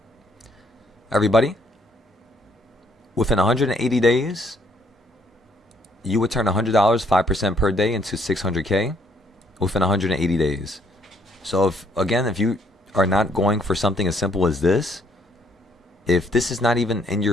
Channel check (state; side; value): normal; both; correlation 0.67